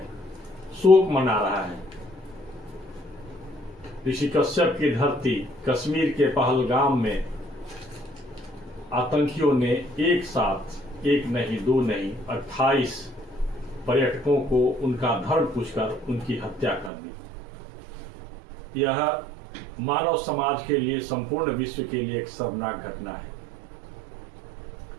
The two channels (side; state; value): left; drops out; at 16.9 s